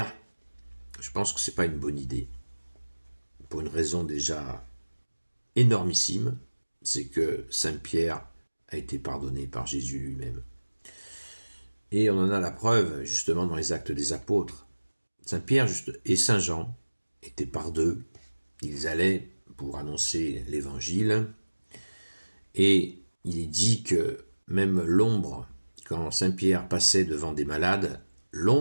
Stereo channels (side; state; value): both; inverted; correlation -1.00